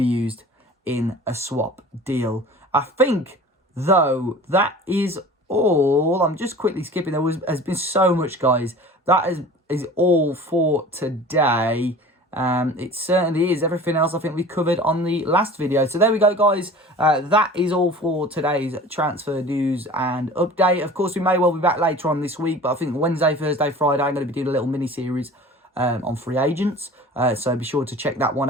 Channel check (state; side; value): normal; both; correlation 0.41